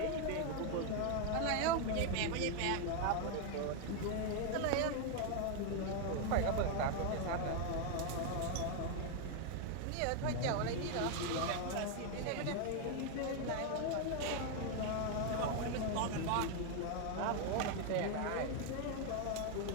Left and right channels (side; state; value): both; different; correlation 0.01